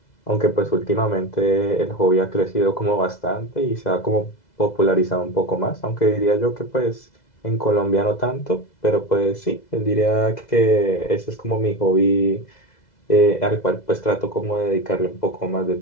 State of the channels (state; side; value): late; right; 2.0 ms